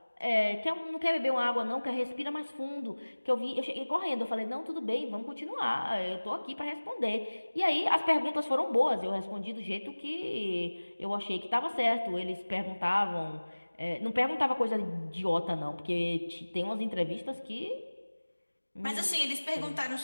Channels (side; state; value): both; inverted; correlation -1.00